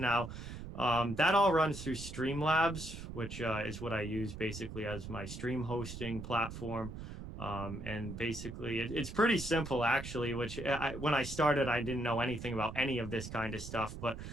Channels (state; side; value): noise; right; rumble, 10 dB below the sound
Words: That all runs through Streamlabs, which is what I use basically as my stream hosting platform. And basically, it's pretty simple, actually, which when I started, I didn't know anything about any of this kind of stuff. But